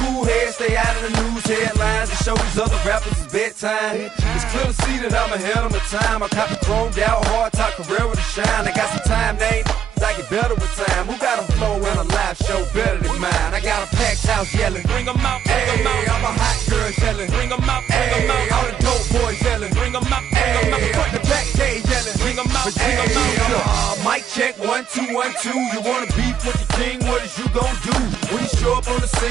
head, stay out of the news headlines, and show these other rappers it's bedtime. It's clear to see that I'm ahead of my time. I caught the chromed out, hard top career with a shine. I got some time, they ain't I get better with time. Who got a flow and a live show better than mine? I got a packed house yelling, Bring 'em out, bring 'em hey, out. all my hot girls yelling, Bring 'em out, bring 'em hey, out. all the dope boys yelling, Bring 'em out, bring 'em out. hey, front to back gay yelling, Bring 'em out, hey, bring 'em out. mic check, 1, 2, 1, 2. You wanna beef with the king, what is you gon' do? When you show up on the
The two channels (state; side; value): quieter; left; 8.9 dB